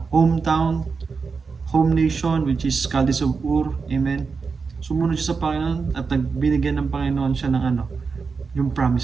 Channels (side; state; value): left; quieter; 5.0 dB